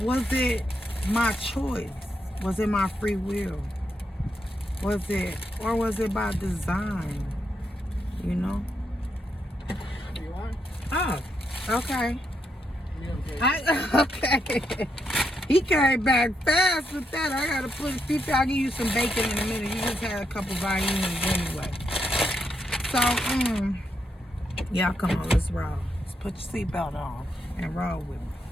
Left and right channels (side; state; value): both; normal; correlation 0.81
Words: it my choice? Was it my free will? Was it by design? You want? Oh, okay. Yeah, Okay. He came back fast with that. I gotta put Fifi, I'll give you some bacon in a minute. You just had a couple violins anyway. So, yeah, come on, let's roll. Let's put your seatbelt on and roll with me.